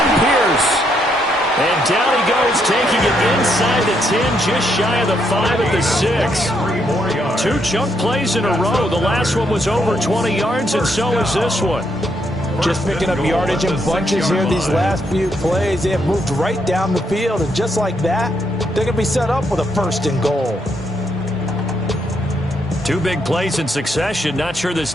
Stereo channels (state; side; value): normal; both; correlation 0.76